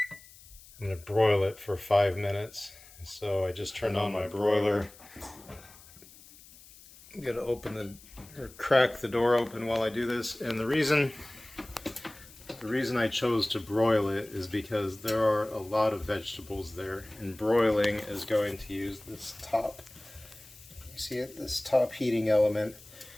I'm going to broil it for 5 minutes. So I just turned on my broiler. I'm going to open or crack the door open while I do this, and the reason I chose to broil it is because there are a lot of vegetables there, and broiling is going to use this top, you see it, this top heating element,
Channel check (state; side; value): noise; left; hiss, 22 dB below the sound